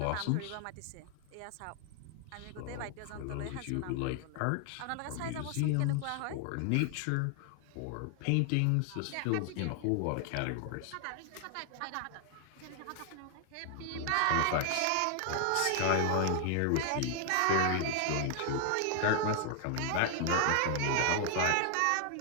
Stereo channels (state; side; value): different; both; correlation 0.00